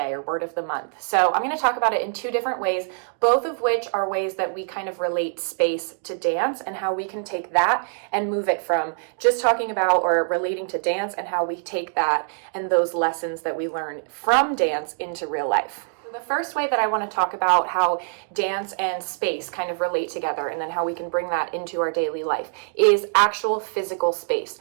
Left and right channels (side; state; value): left; silent; digital silence